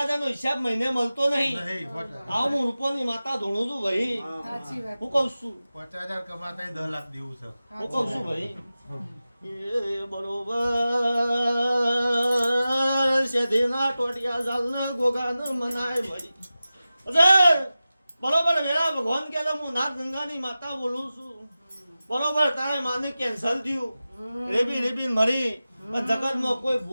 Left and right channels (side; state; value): both; inverted; correlation -0.95